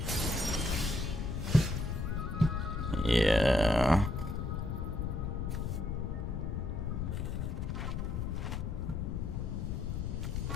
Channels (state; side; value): noise; left; rumble, 2 dB below the sound